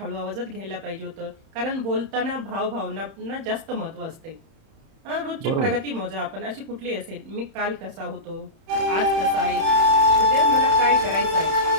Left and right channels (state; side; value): late; left; 31 ms